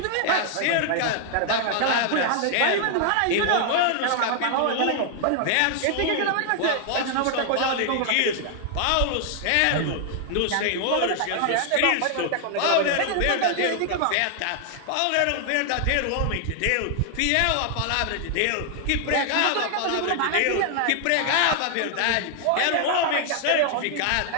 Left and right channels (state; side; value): different; both; correlation 0.00